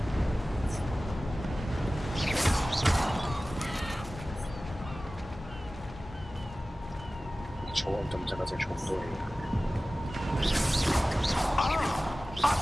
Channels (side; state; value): both; normal; correlation 0.97